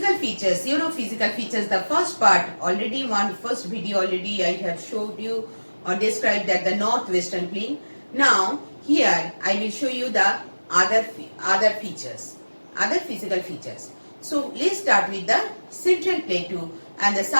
features, physical features, the first part already, first video already I have showed you or described that the northwestern plain. Now here I will show you the other features, other physical features. So let's start with the central plateau and the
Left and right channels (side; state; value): both; inverted; correlation -1.00